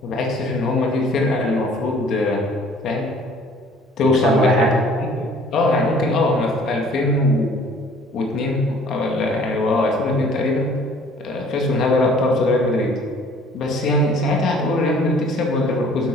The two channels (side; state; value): both; normal; correlation 0.54